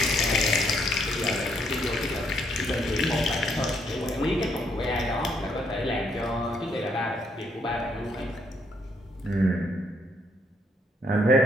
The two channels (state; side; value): normal; both; correlation 0.71